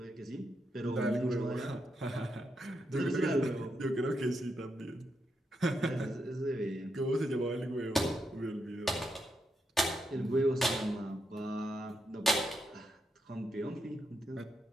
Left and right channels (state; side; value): normal; both; correlation 0.82